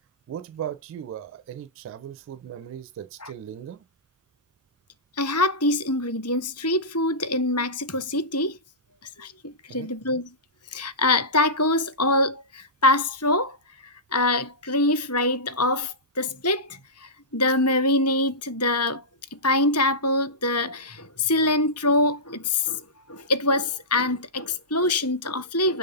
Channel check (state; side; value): normal; both; correlation -0.16